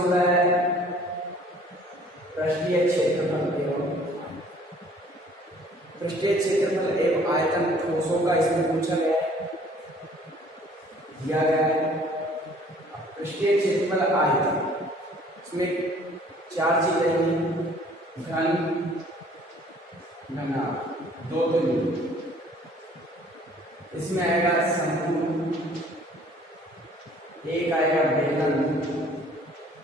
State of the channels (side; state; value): both; normal; correlation 0.55